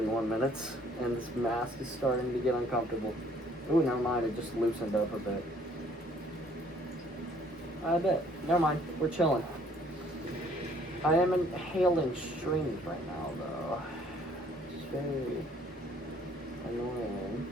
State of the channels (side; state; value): both; normal; correlation 0.60